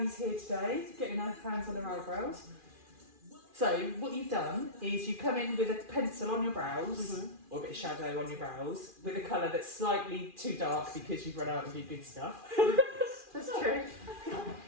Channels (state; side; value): late; left; 2.4 ms